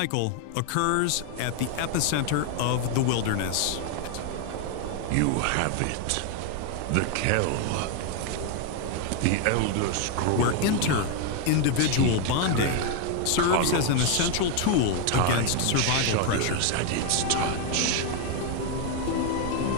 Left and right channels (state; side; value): different; both; correlation 0.01